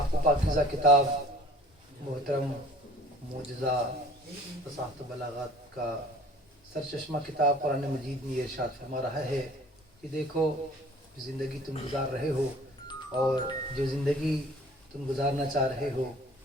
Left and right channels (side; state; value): both; normal; correlation 0.50